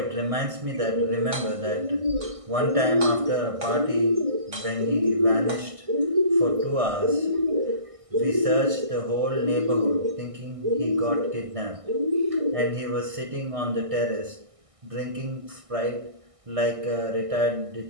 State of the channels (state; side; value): late; left; 1.6 ms